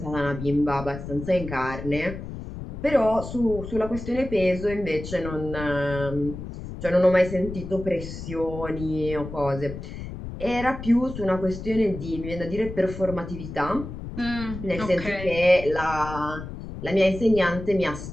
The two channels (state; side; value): noise; left; rumble, 9 dB below the sound